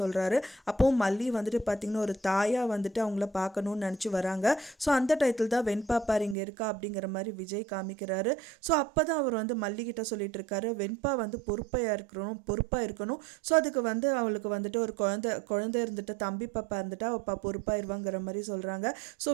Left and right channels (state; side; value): drops out; left; at 6.4 s